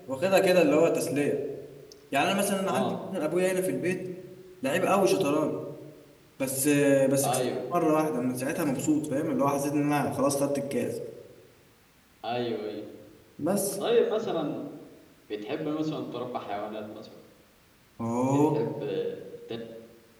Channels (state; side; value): identical; both; correlation 1.00